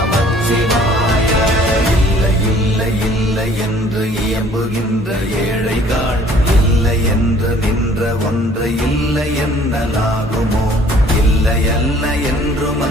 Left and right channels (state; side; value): normal; both; correlation 0.55